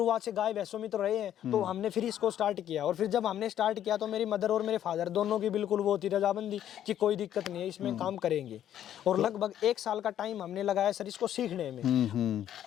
से गाय भैंसों में तो रहे हैं, तो हमने फिर इसको स्टार्ट किया। और फिर जब हमने स्टार्ट किया तो मेरी मदर और मेरे फादर दोनों की बिल्कुल वो थी रजामंदी कि कोई दिक्कत नहीं है, इसमें काम करेंगे। और लगभग 1 साल का टाइम हमने लगाया सर इसको सीखने में।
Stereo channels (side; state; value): right; quieter; 10.9 dB